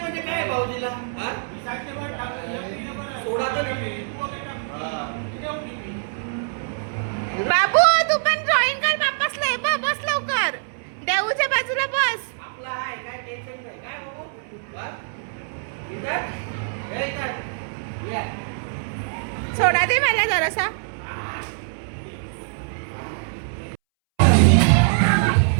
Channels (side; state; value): left; silent; 63 dB below the other